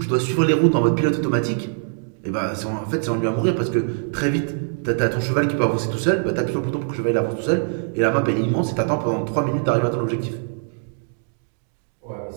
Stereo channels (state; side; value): silent; left; digital silence